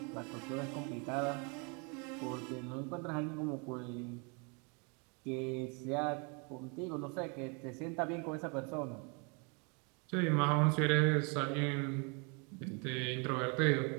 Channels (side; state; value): left; quieter; 34.0 dB